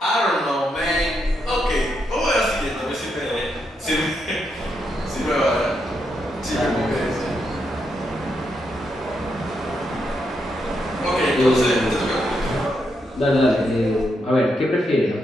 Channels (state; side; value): normal; both; correlation 0.81